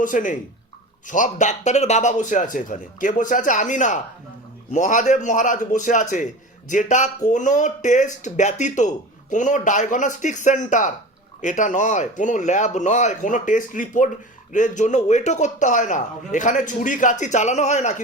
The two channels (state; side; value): normal; both; correlation 0.33